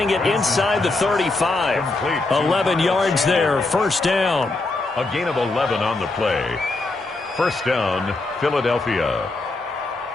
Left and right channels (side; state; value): right; quieter; 3.2 dB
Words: it inside the 35. 11 yards there, first down. A gain of 11 on the play. First down, Philadelphia.